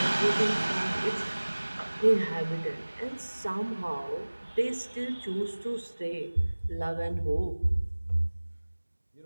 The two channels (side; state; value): both; inverted; correlation -1.00